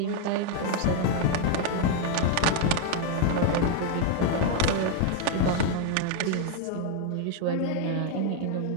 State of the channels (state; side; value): different; both; correlation 0.01